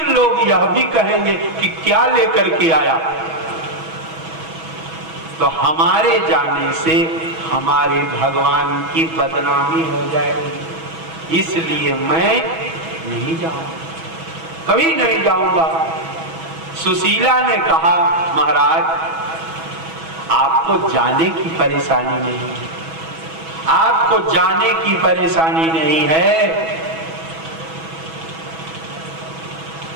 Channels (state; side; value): late; left; 6.2 ms